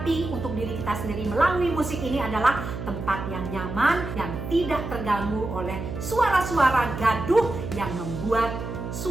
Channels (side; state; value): right; noise; hum, 7 dB below the sound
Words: untuk diri kita sendiri melalui musik ini adalah tempat yang nyaman, yang tidak terganggu oleh suara-suara gaduh yang membuat